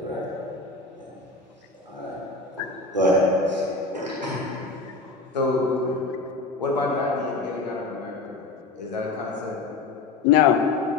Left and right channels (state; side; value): quieter; right; 3.6 dB